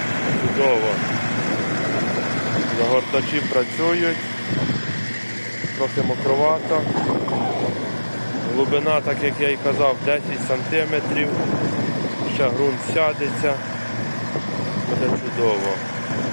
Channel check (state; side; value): inverted; both; correlation -1.00